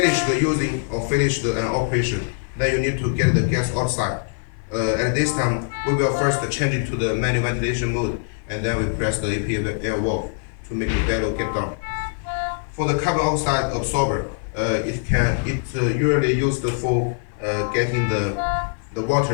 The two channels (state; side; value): silent; right; 55 dB below the other